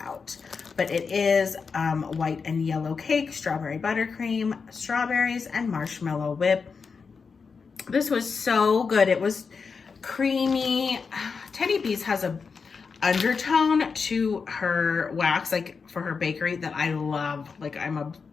But it is white and yellow cake, strawberry buttercream, strawberries, and marshmallow whip. This was so good. It was creamy. Teddy B's has a undertone to her wax, like for her bakery, that I love. Like I'm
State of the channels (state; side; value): quieter; right; 5.3 dB